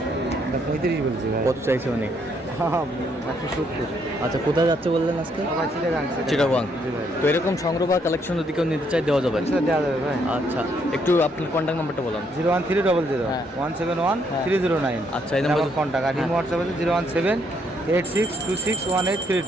35 বলছি ভাই। কত চাইছে উনি? 170। আচ্ছা, কোথায় যাচ্ছে বললেন আজকে? চিটাগাং। তো এরকম সংগ্রহ বা কালেকশন যদি কেউ নিতে চাই দেওয়া যাবে? দেওয়া যাবে ভাই। আচ্ছা, একটু আপনার কন্ট্যাক্ট নাম্বারটা বলুন। 01300 হ্যাঁ। 171 হ্যাঁ। 309। আচ্ছা, এই নাম্বার কন্ট্যাক্ট আর হ্যাঁ। হোয়াটসঅ্যাপ আছে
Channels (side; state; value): both; normal; correlation 0.72